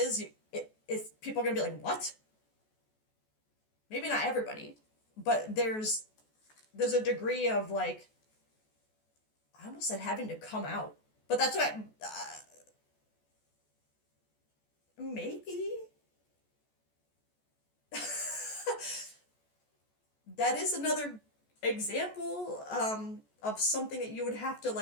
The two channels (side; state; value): right; late; 14 ms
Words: it's people are gonna be like, what? Maybe not everybody, but there's a degree of like I almost said having to come out, but that's what maybe that is another example of something that you would have to